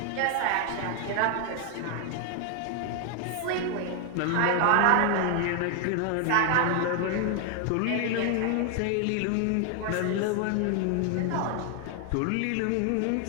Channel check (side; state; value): both; different; correlation 0.00